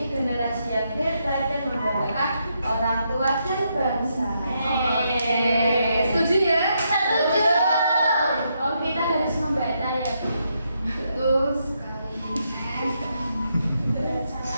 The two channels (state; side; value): inverted; both; correlation -0.79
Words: generasi yang hebat dan membanggakan orang tua dan bangsa. Setuju ya? Setuju. Oh, kita harus membaca ya, Bu. Betul sekali.